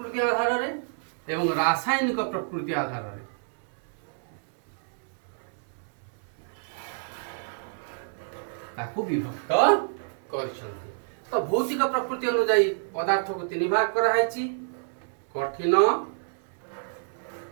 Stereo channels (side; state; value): left; silent; 59 dB below the other